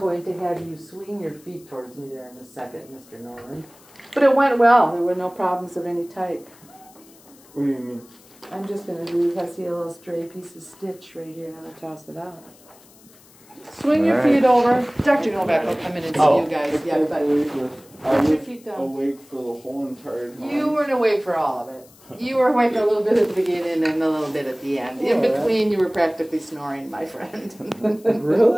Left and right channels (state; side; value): noise; left; hiss, 26 dB below the sound